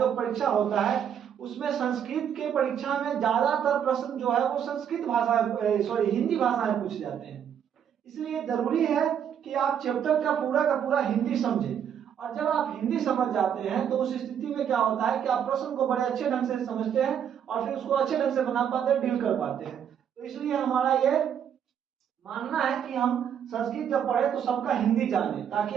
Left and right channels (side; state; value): left; quieter; 8.7 dB